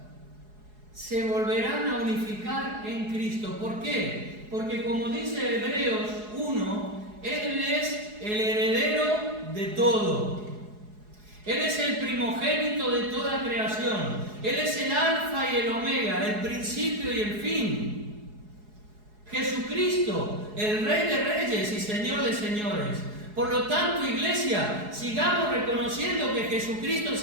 se volverán a unificar en Cristo. ¿Por qué? Porque como dice Hebreos 1, Él es el heredero de todo. Él es el primogénito de toda creación. Él es el alfa y el omega, el principio y el fin. Jesucristo, el Rey de Reyes y Señor de Señores. Por lo tanto, iglesia, sigamos reconociendo que Jesucristo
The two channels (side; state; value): left; late; 4.8 ms